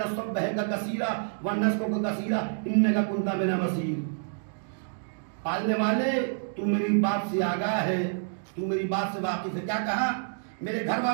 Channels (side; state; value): left; silent; digital silence